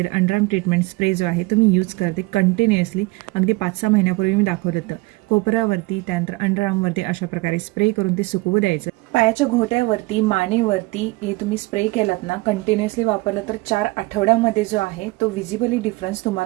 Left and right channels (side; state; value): left; quieter; 23.0 dB